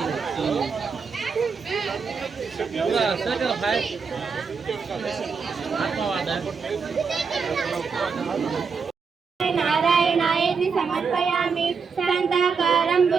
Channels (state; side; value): quieter; left; 5.5 dB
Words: नारायणायति समर्पयामि शान्ताकारं